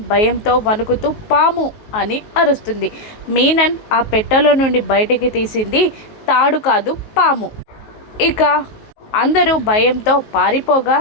భయంతో వణుకుతూ పాము అని అరుస్తుంది. మీనన్ ఆ పెట్టెలో నుండి బయటికి తీసింది తాడు కాదు, పాము. ఇక అందరూ భయంతో పారిపోగా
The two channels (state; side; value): late; right; 19 ms